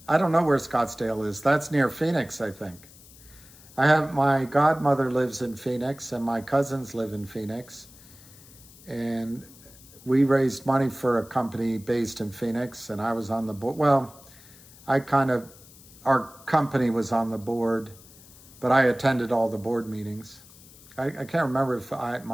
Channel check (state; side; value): noise; left; hiss, 22 dB below the sound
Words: I don't know where Scottsdale is. That's near Phoenix, I think. My godmother lives in Phoenix, and my cousins live in Phoenix. And we raised money for a company based in Phoenix, and I was on the board. Well, our company was on the board, but I attended all the board meetings. I can't remember if